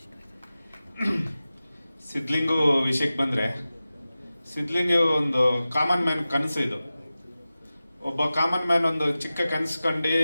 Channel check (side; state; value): both; inverted; correlation -0.95